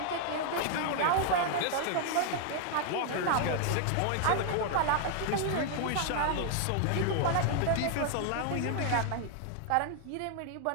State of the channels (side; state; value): both; different; correlation 0.00